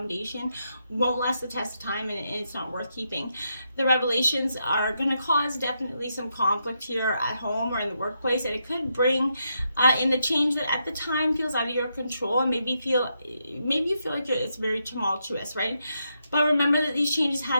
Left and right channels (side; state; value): both; inverted; correlation -0.82